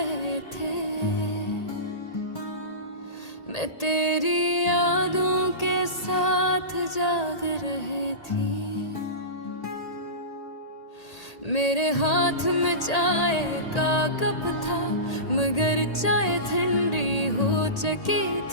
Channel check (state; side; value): late; right; 1.8 ms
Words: थे, मैं तेरी यादों के साथ जाग रही थी। मेरे हाथ में चाय का कप था, मगर चाय ठंडी हो चुकी